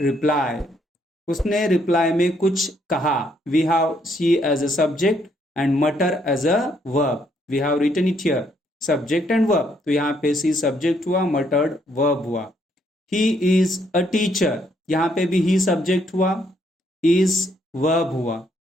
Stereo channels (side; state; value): both; normal; correlation 0.71